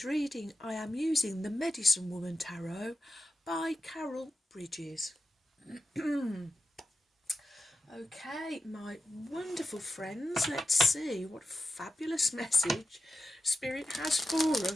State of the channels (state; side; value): normal; both; correlation 0.92